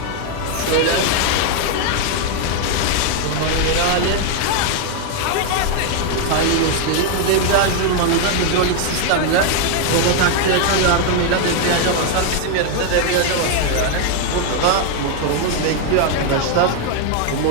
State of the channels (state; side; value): different; both; correlation 0.01